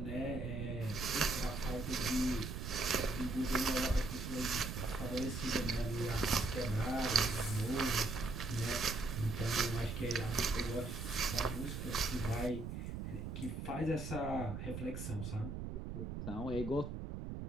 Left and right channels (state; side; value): noise; right; rumble, 5 dB below the sound